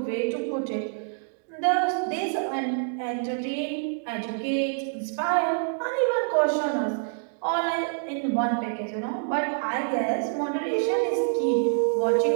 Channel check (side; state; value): left; silent; digital silence